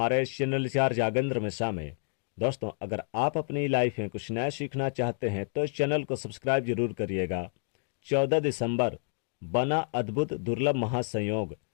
इस चैनल चार जागेंद्र मिश्रा में। दोस्तों, अगर आप अपनी लाइफ में कुछ नया सीखना चाहते हैं तो इस चैनल को सब्सक्राइब जरूर करिएगा। 14 दिसंबर बना अद्भुत दुर्लभ महासंयोग,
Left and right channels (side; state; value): right; silent; digital silence